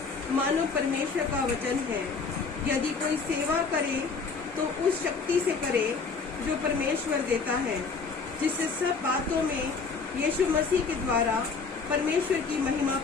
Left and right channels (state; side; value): quieter; right; 4.8 dB